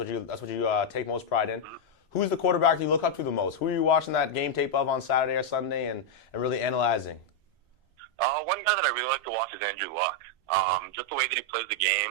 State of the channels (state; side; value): normal; both; correlation -0.01